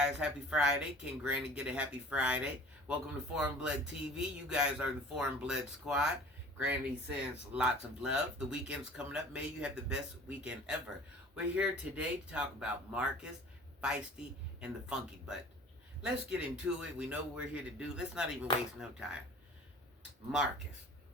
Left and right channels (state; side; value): normal; both; correlation 0.46